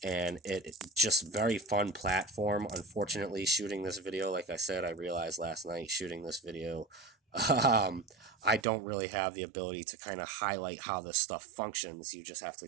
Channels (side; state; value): left; drops out; at 8.7 s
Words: and it just very fun platform. Unfortunately, shooting this video, like I said, I realized last night shooting this video, I don't really have the ability to kind of highlight how this stuff functions. You just have